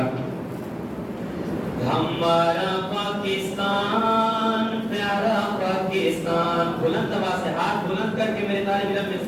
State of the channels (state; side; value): identical; both; correlation 1.00